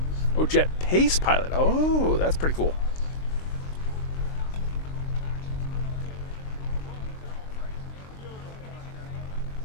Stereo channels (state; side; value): late; right; 23 ms